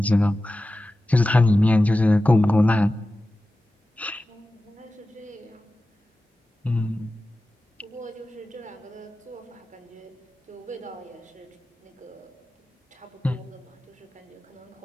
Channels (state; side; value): normal; both; correlation 0.95